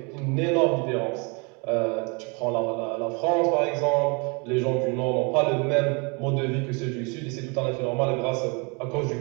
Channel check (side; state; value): left; quieter; 31.7 dB